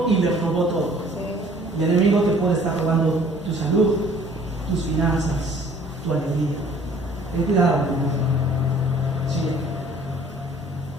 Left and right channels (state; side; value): normal; both; correlation 0.54